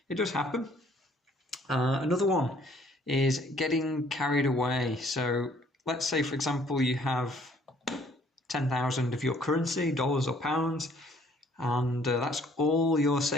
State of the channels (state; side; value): normal; both; correlation 0.60